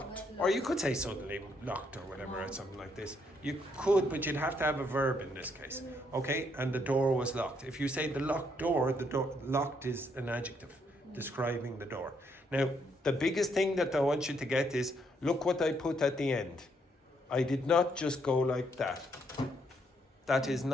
Or you could say suddenly locked or whatever, or something like this. You could, but you'd have to have a verb in this case. Okay, and the door was locked. If you say the locked door, locked is an adjective describing the door. Now, the biggest thing that I want you to get is, look what I put at the end. I did not just go like that. That is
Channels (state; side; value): normal; both; correlation 0.73